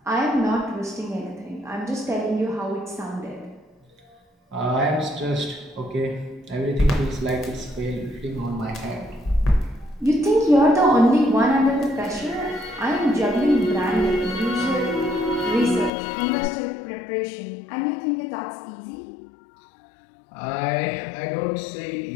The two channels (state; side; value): drops out; right; at 15.9 s